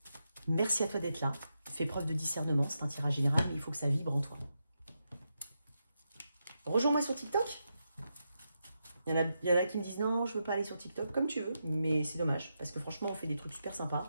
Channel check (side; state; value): both; inverted; correlation -0.86